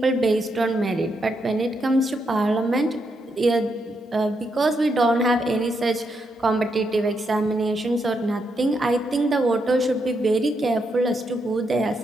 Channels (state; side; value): normal; both; correlation 0.80